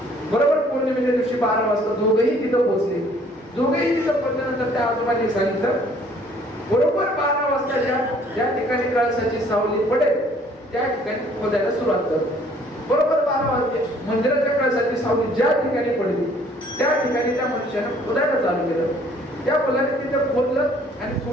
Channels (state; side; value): normal; both; correlation 0.58